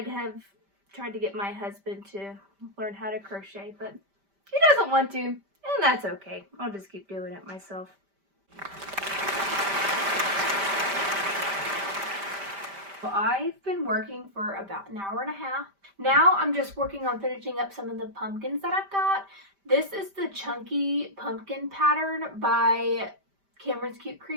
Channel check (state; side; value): late; left; 5.1 ms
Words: to get my husband to learn how to crochet, but he doesn't want to, and that's okay. I'll just keep doing it myself. Well, I've been working for about an hour and a half. Now I'm just working on finishing up some of the pumpkins that I've got. This is the Chunky Pumpkin pattern by Cameron's Cute